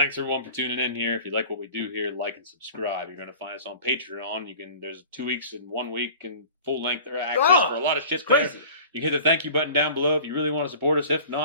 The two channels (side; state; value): both; inverted; correlation -0.42